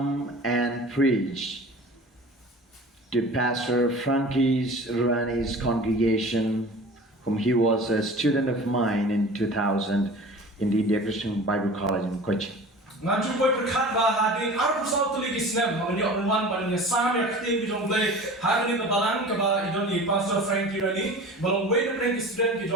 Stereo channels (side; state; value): both; normal; correlation 0.39